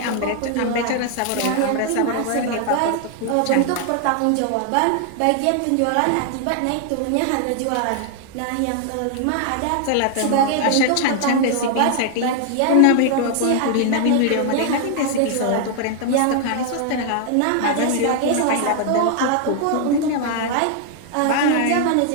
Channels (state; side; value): different; both; correlation 0.00